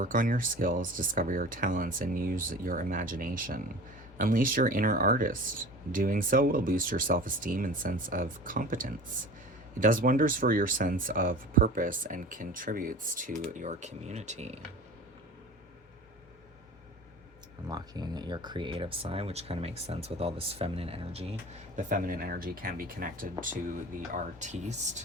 on your skills, discover your talents, and use your imagination. Unleash your inner artist. Doing so will boost your self-esteem and sense of competence. It does wonders for your sense of purpose and contributes to your community. Unlocking your creative side, which kind of makes sense with all this feminine energy. The feminine energy can be connected to the artiste,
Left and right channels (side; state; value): both; normal; correlation 0.38